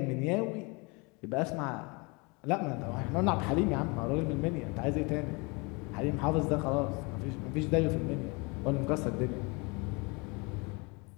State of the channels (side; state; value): right; quieter; 28.7 dB